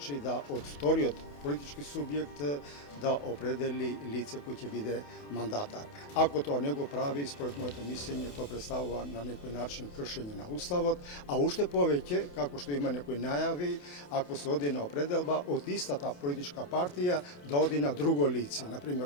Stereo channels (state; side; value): late; right; 28 ms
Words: да од вториот политички субјект да определи лице кој ќе биде мандатар. Ако тоа не го прави, според моето мислење, тоа представува на некој начин кршење на Уставот, а уште повеќе, како што има некои најави, ако се оди на определба од истата политичка партија да оди на друго лице,